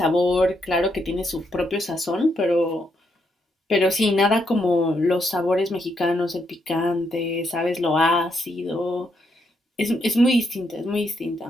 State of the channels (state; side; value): normal; both; correlation 0.78